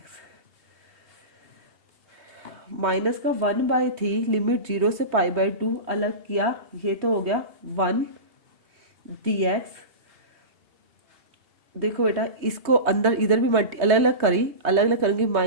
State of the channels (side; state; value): left; late; 3.2 ms